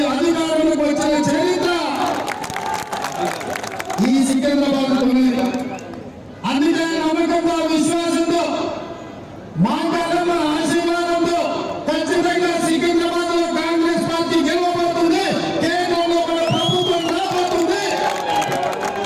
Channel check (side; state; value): both; identical; correlation 1.00